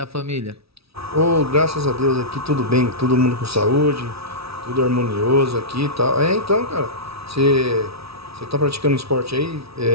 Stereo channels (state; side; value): late; left; 0.77 ms